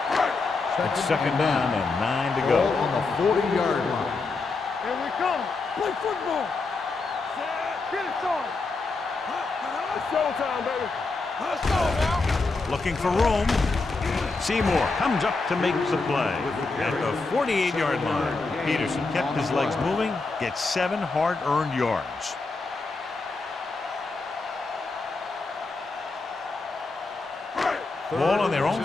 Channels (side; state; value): right; quieter; 3.8 dB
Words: It's 2nd down and 9 to go. On the 40-yard line. Here we come. Play football. Get it started. It's showtime, baby. Let's go now. Looking for room. Seymour comes up to make the play at the 48-yard line. Peterson kept his legs moving, gets 7 hard-earned yards. Ball on their own